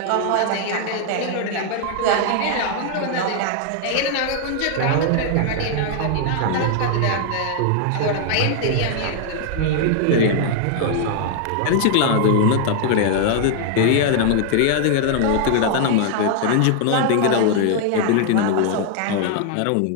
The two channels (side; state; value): both; different; correlation 0.00